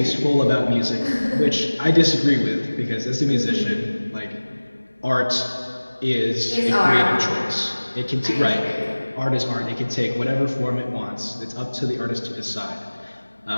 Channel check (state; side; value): inverted; both; correlation -1.00